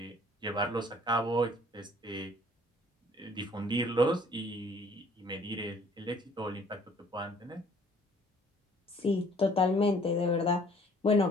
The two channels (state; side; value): normal; both; correlation 0.57